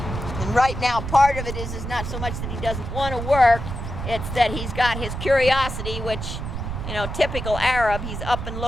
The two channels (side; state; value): right; noise; rumble, 6 dB below the sound